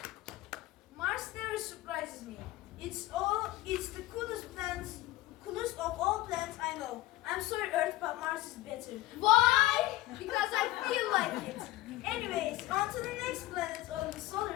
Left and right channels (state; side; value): quieter; right; 17.0 dB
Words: Mars never surprises me. It's the coolest of all planets I know. I'm sorry, Earth, but Mars is better. Why? Because I feel like it. Anyways, on to the next planet of the